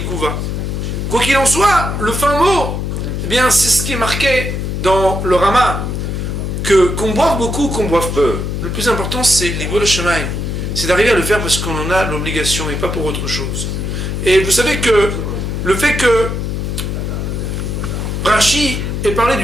Quoi qu'il en soit, le fin mot, eh bien, c'est ce qui est marqué dans le Rama. Qu'on boive beaucoup ou qu'on boive peu, le plus important c'est l'Igol Shemaim. C'est d'arriver à le faire parce qu'on en a l'obligation et pas pour autre chose. Et vous savez que le fait que Rashi ait parlé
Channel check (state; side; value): noise; left; hum, 3 dB below the sound